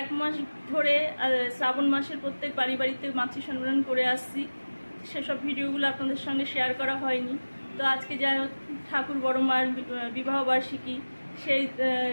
এক মাস ধরে শ্রাবণ মাসের প্রত্যেক বাড়িতে মাতৃ সম্মেলন করে আসছি। সেসব ভিডিওগুলো আপনাদের সঙ্গে শেয়ার করা হয়নি। তো আজকে যা ঠাকুর বড় মার বিবাহবার্ষিকী, সেই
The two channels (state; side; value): inverted; both; correlation -1.00